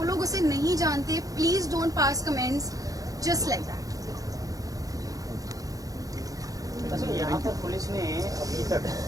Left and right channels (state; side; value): late; left; 0.17 ms